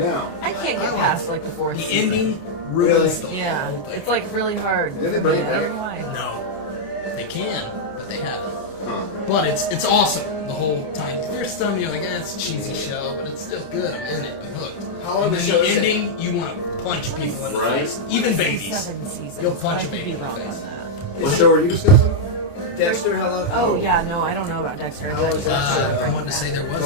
I can't get past like the fourth The season. ending ruins the Yeah, whole thing. it's like really hard. Did they for bring me. it I don't back? know why. No, they can, but they haven't. Huh. But it's awesome the whole time. There's some you're like, it's a cheesy show, but it's still good. I'm in it. I'm hooked. How long and of a then show the is it? ending, you want to punch people in the Right. face, even babies. 7 seasons. You'll punch but I a could baby be in the wrong face. on that. What show are you discussing? Dexter, how long? Oh yeah, no, I don't know about Dexter. How was that show? I want to say there was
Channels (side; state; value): right; late; 29 ms